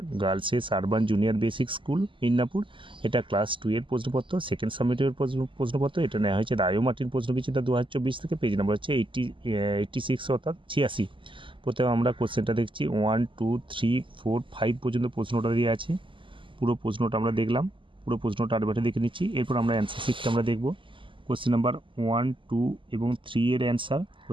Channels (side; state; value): left; late; 0.25 ms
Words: girls urban junior basic school Midnapore. এটা ক্লাস 2 এর প্রশ্নপত্র, সেকেন্ড সাবমিটের প্রশ্নপত্র। এটা নেওয়া হয়েছে রায়ো মার্টিন প্রশ্নবিচিতা 2024 থেকে। পেজ নাম্বার হচ্ছে 86 অর্থাৎ 86। প্রথমে আমরা কোশ্চেনটা দেখছি 1 2 3 4 5 পর্যন্ত প্রশ্নটা দিয়ে আছে। পুরো প্রশ্নটা আমরা দেখলাম, পুরো প্রশ্নটা আরেকবার দেখে নিচ্ছি। এরপর আমরা অ্যান্সার শিটটা আমরা দেখব। কোশ্চেন নাম্বার 1 2 এবং 3 এর অ্যান্সার,